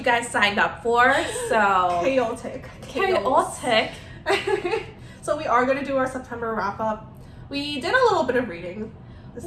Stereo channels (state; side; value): identical; both; correlation 1.00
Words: guys signed up for, so... Chaotic. So we are going to do our September wrap-up. We did a little bit of reading this